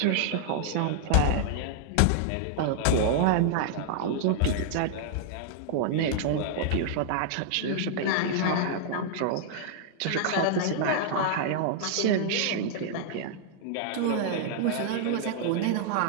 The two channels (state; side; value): different; both; correlation -0.01